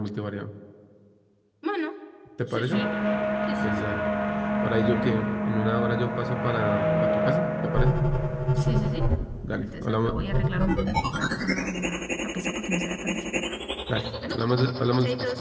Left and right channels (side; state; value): both; identical; correlation 1.00